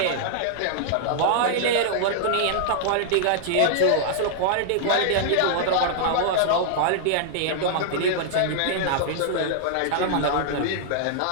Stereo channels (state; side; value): different; both; correlation -0.01